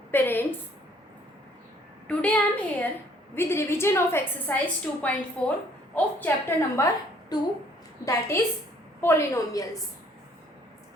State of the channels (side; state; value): both; normal; correlation 0.61